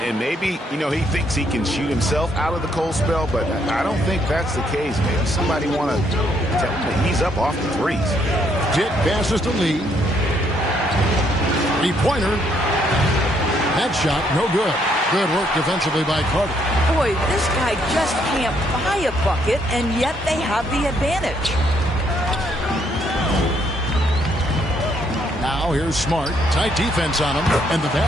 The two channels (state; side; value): normal; both; correlation 0.71